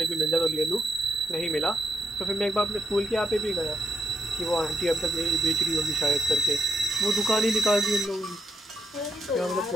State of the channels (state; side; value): normal; both; correlation 0.81